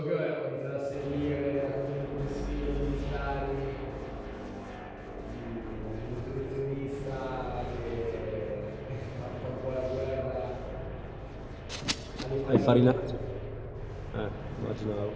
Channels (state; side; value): identical; both; correlation 1.00